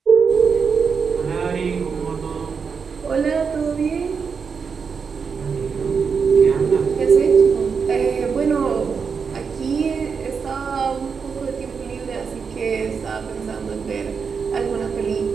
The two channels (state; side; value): quieter; left; 5.9 dB